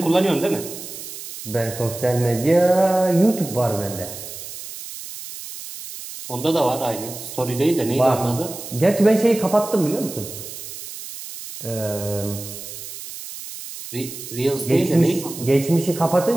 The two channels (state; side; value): noise; right; hiss, 11 dB below the sound